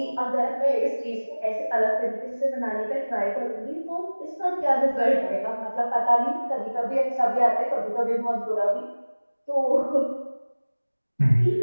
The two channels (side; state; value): both; inverted; correlation -1.00